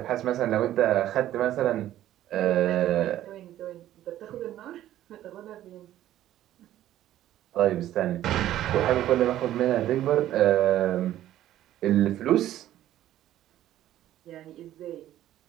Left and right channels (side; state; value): left; quieter; 13.0 dB